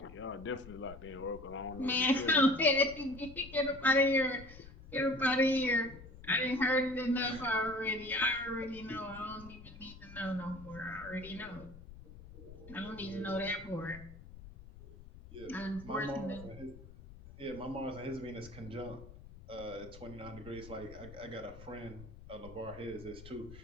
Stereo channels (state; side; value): noise; left; rumble, 16 dB below the sound